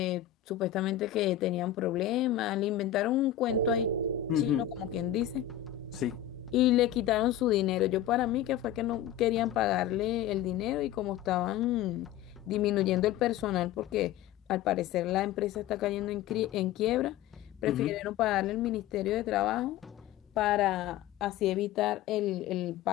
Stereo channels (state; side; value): quieter; right; 11.5 dB